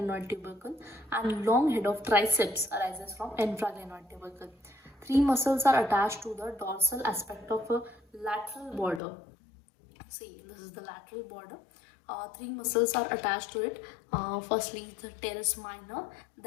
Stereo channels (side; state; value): right; drops out; at 9.0 s